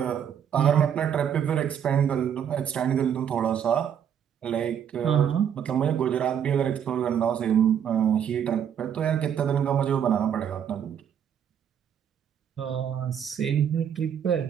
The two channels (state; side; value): quieter; left; 8.7 dB